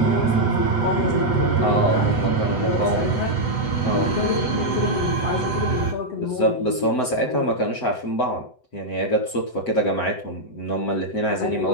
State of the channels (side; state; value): right; late; 8.0 ms